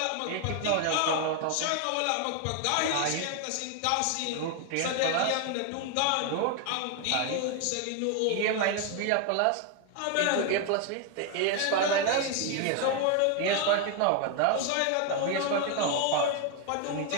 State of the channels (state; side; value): different; both; correlation 0.01